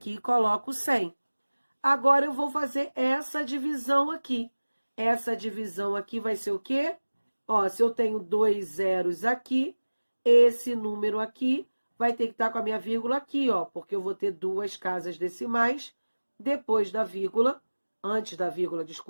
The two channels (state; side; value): inverted; both; correlation -1.00